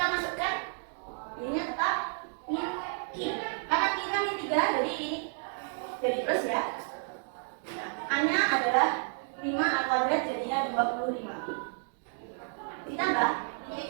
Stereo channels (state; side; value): silent; left; 57 dB below the other